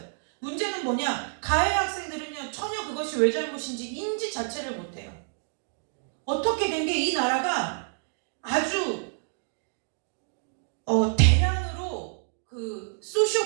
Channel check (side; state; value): left; silent; digital silence